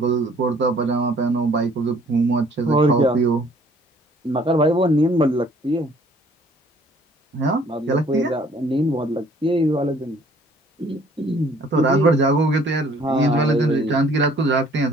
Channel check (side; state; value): both; normal; correlation 0.58